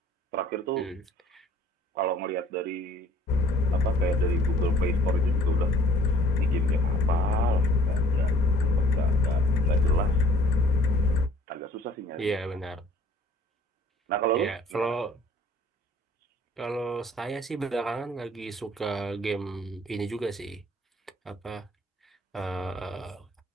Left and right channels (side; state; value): both; normal; correlation 0.54